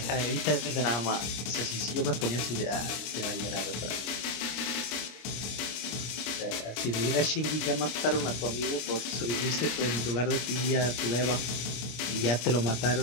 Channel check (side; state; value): right; late; 26 ms